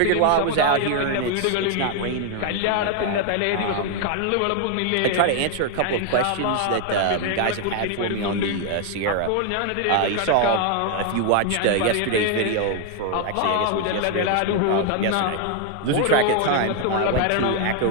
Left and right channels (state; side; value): different; both; correlation 0.00